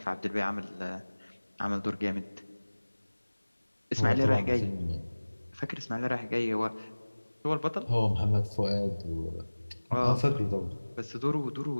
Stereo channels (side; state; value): both; inverted; correlation -1.00